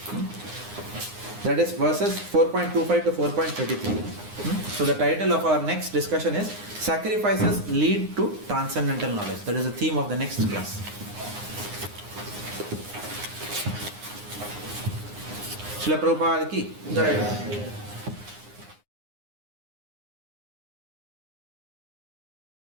That is verses 4.25 to 4.33. So the title of our next discussion is Sacrifices Lead to Transcendental Knowledge. That is the theme of the next class. Srila Prabhupada ki Jai.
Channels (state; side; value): late; left; 9.7 ms